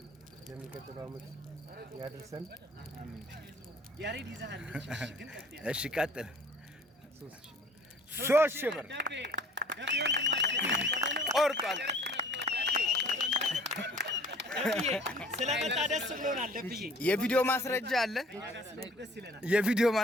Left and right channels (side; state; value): both; normal; correlation 0.51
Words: ለሚቀጥለው ዓመት ያድርሰን። ያሬድ ይዛለች። እሺ ቀጥል። 3000 ብር ቆርጧል። ስለመጣ ደስ ብሎናል። ደብዬ የቪዲዮ ማስረጃ አለ። የቪዲዮ